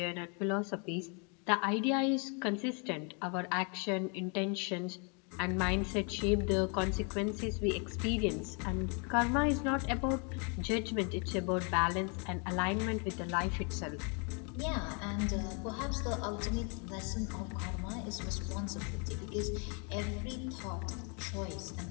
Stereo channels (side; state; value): right; quieter; 36.3 dB